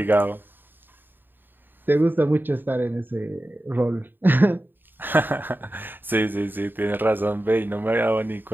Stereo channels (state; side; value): late; left; 0.094 ms